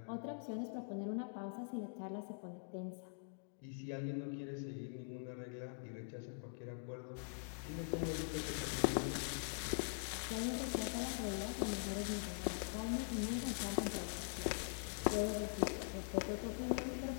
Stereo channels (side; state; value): right; silent; digital silence